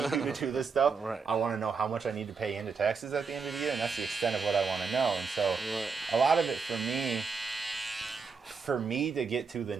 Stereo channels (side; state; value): left; quieter; 5.1 dB